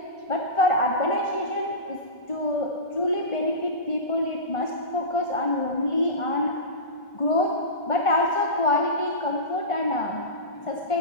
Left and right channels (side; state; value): right; late; 1.5 ms